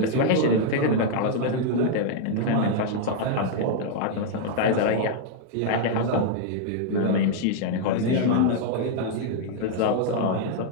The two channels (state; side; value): different; both; correlation -0.01